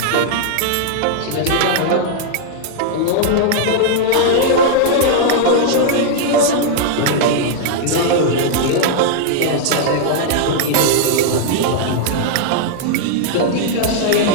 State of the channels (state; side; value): different; both; correlation -0.01